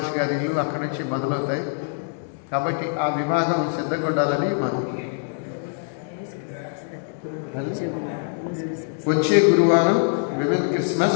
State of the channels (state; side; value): silent; right; digital silence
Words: గారి ఇల్లు అక్కడి నుంచి మొదలవుతాయి. కాబట్టి ఆ విభాగం సిద్ధంగా ఉండాలని మనం. వచ్చే గురువారం విమెన్